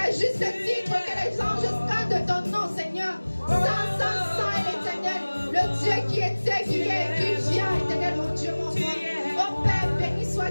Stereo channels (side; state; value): both; inverted; correlation -1.00